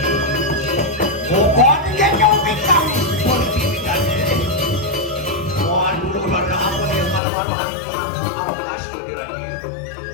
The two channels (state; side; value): drops out; right; at 7.2 s